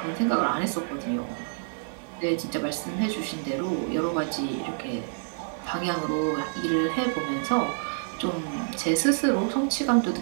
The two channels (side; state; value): left; silent; digital silence